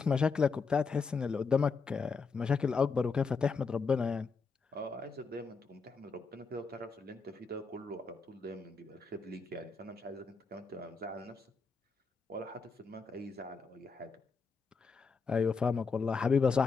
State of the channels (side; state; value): right; quieter; 4.8 dB